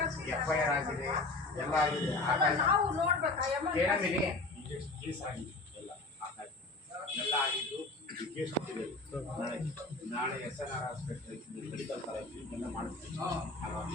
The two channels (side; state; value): right; quieter; 3.3 dB